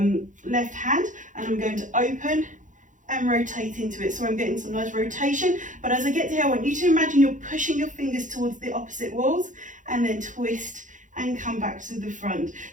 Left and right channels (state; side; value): late; left; 0.37 ms